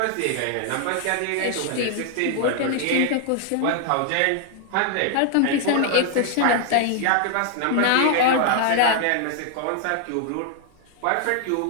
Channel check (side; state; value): both; different; correlation 0.00